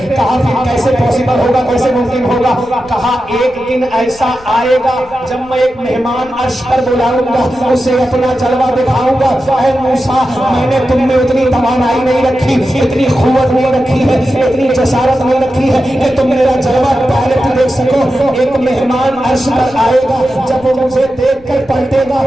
کہا پھر کیسے پاسبل ہوگا, کیسے ممکن ہوگا؟ کہا ایک دن ایسا آئے گا جب میں ایک مہمان عرش پر بلاؤں گا, اسے اپنا جلوہ دکھاؤں گا. اے موسیٰ, میں نے تم میں اتنی توانائی نہیں رکھی, اتنی قوت نہیں رکھی ہے, اتنی جسارت نہیں رکھی ہے کہ تم میرا جلوہ ڈائریکٹ دیکھ سکو. ایک مہمان عرش پر آئے گا, جب وہ مجھے دیکھ کر پلٹے گا,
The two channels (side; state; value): left; noise; rumble, 24 dB below the sound